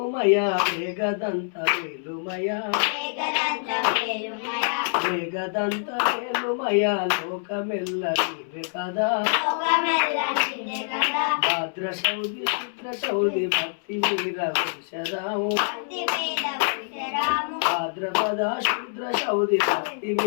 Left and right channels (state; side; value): silent; right; 61 dB below the other